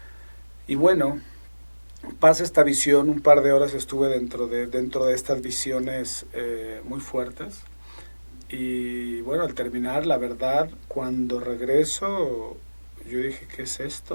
Y bueno, pasa esta visión, un par de horas estuve dentro de estas visiones muy fuertes. Y bueno, al terminar, la verdad, cuando regreso, yo dije, ¿qué es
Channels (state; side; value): inverted; both; correlation -1.00